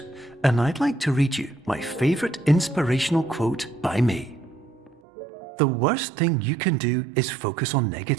and I'd like to read you my favorite inspirational quote by me. The worst thing you can do is focus on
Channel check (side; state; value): left; drops out; at 5.0 s